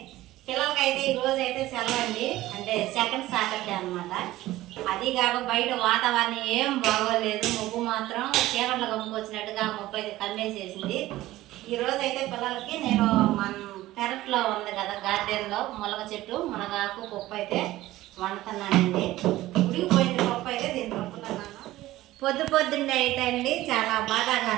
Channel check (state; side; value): quieter; left; 16.3 dB